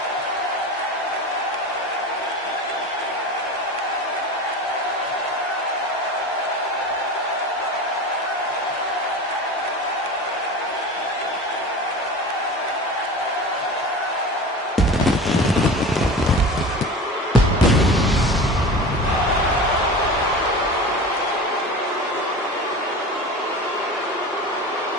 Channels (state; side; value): normal; both; correlation 0.32